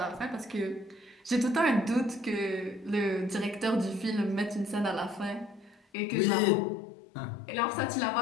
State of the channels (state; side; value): drops out; right; at 5.8 s